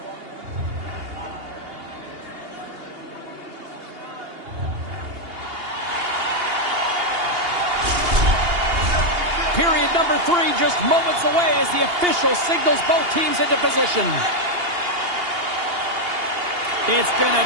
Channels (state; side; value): late; left; 2.8 ms